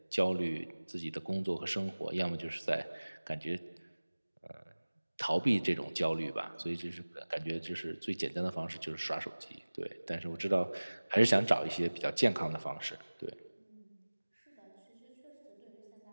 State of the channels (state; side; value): inverted; both; correlation -1.00